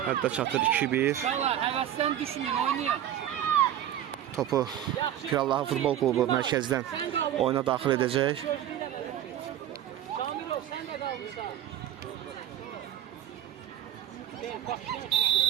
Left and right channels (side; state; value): left; quieter; 11.3 dB